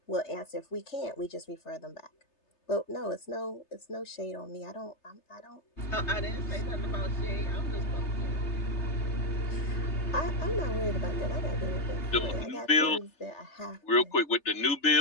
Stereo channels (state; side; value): late; right; 3.3 ms